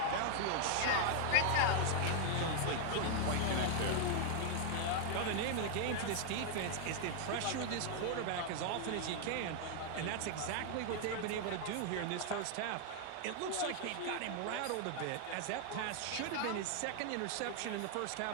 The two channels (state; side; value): different; both; correlation 0.00